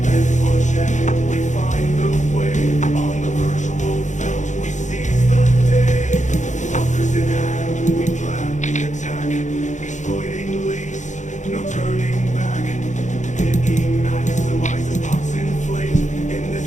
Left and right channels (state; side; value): late; right; 0.35 ms